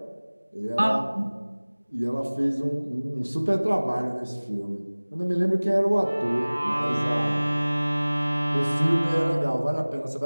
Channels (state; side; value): inverted; both; correlation -1.00